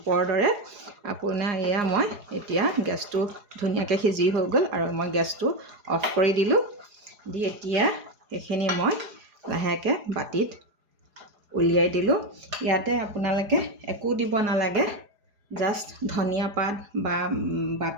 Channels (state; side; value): late; left; 4.8 ms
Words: দৰে। আপোনাৰ এয়া মই এতিয়া গেছটো ধুনীয়াকৈ সিজি হৈ গ'ল আৰু মই গেছটো অফ কৰি দিলোঁ। দি এতিয়া এইখিনি মই লাহেকৈ বাতিত উলিয়াই দিলোঁ। ইয়াতে আপোনালোকে একো দিব নালাগে, জাষ্ট ধনিয়া পাত বা